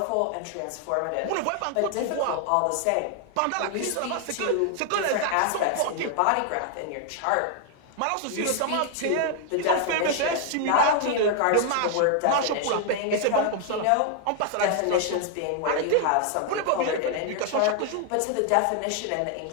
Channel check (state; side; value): different; both; correlation 0.00